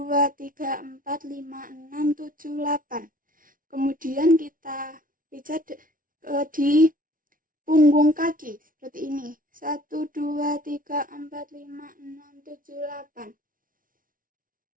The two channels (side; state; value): left; late; 0.40 ms